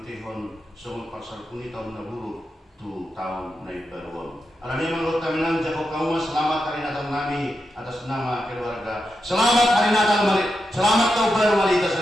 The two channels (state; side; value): normal; both; correlation 0.87